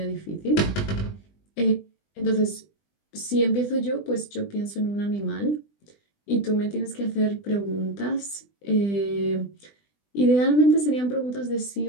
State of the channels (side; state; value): right; late; 20 ms